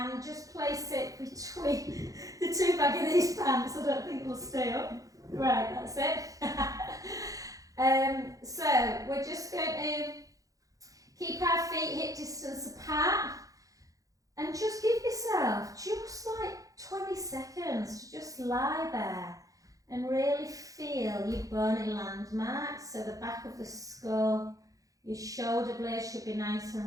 just place it between the two back of these pants. I don't think it'll stay up. Right, that's it. So we're just going to keep our feet hip distance apart and just give yourself just like 20 seconds to just lie there and really feel your bony landmarks. So the back of the skull, your shoulder blades should be nice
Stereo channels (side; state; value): left; late; 0.17 ms